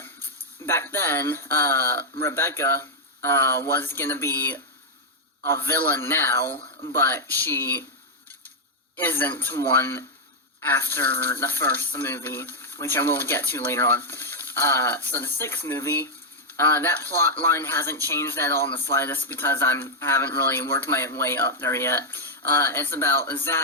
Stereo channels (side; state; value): both; normal; correlation -0.03